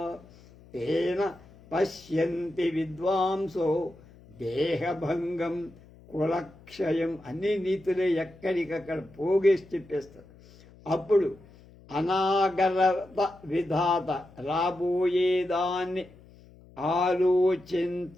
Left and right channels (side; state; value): left; noise; hum, 24 dB below the sound